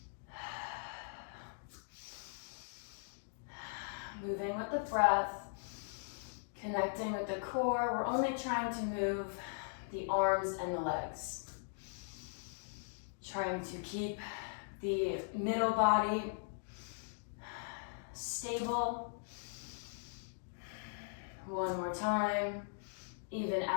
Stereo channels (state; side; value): silent; right; digital silence